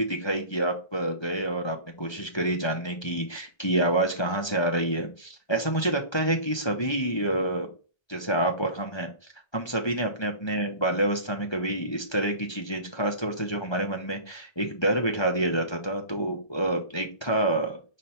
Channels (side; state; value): right; late; 1.3 ms